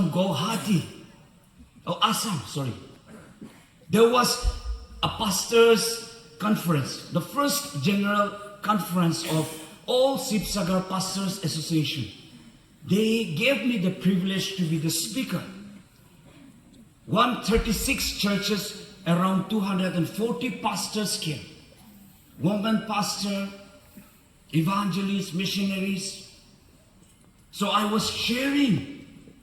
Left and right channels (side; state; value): both; identical; correlation 1.00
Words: Guwahati, Assam, sorry. There was a pastors' conference, the first general conference of all Sibsagar Pastors Association. They gave me the privilege to be the speaker. 136 churches, around 240 pastors came. Women pastor, evangelists, missionaries. So I was sharing